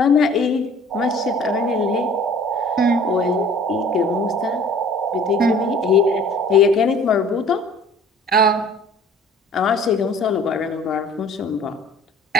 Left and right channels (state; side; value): normal; both; correlation 0.49